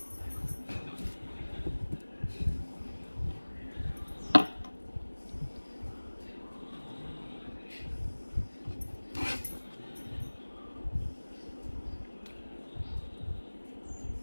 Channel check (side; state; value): both; inverted; correlation -1.00